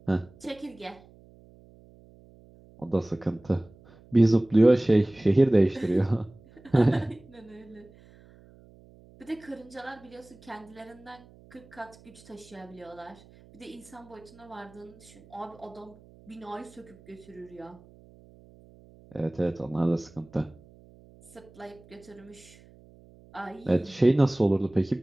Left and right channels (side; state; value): right; noise; hum, 25 dB below the sound